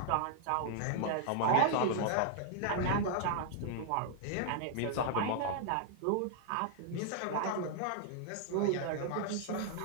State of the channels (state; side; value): different; both; correlation 0.00